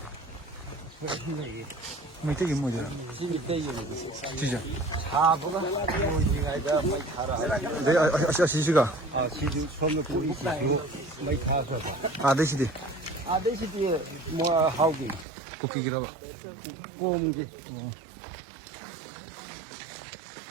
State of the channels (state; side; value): drops out; left; at 15.2 s